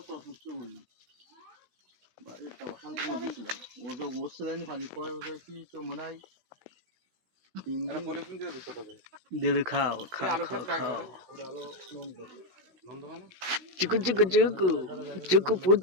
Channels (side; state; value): left; late; 16 ms